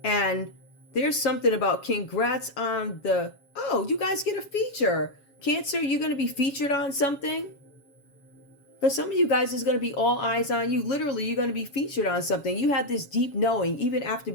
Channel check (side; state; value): right; late; 7.2 ms